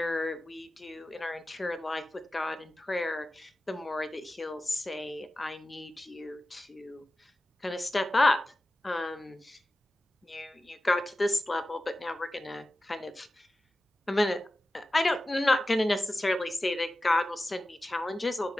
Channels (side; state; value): both; normal; correlation 0.94